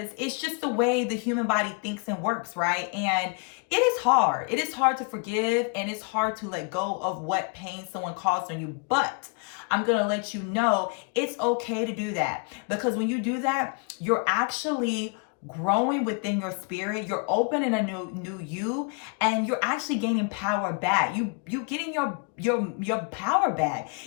it's just the way the human body thinks and works, right? And it is hard. It is hard to forgive, and it's hard to let go of what pain someone caused on you. But I'm going to let you know it's okay to do that, because when you do that, you're actually growing within your spirit. You're opening a new you, and you're actually gaining power back. You getting your power back.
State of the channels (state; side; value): quieter; right; 34.7 dB